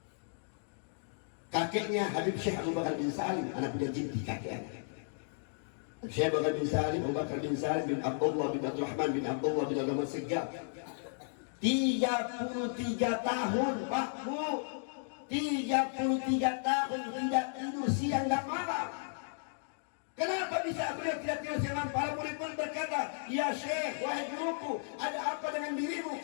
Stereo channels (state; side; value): silent; right; digital silence